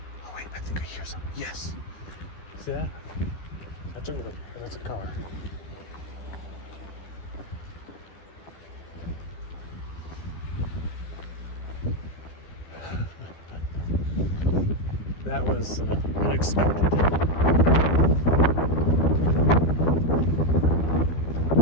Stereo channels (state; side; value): late; right; 12 ms